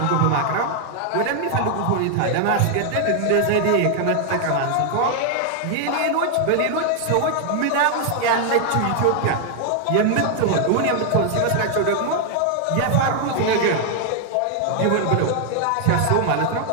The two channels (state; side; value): different; both; correlation 0.00